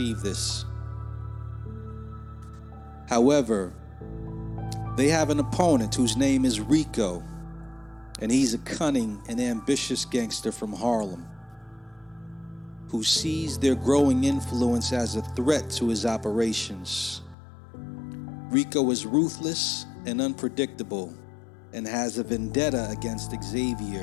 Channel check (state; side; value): drops out; right; at 17.4 s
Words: this. However, they have an opponent whose name is Rico, and he's a cunning and ambitious gangster from Harlem who sees their growing influence as a threat to his operations. Rico is ruthless and unpredictable and has a vendetta against